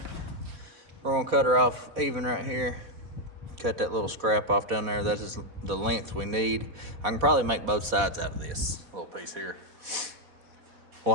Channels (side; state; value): left; late; 4.1 ms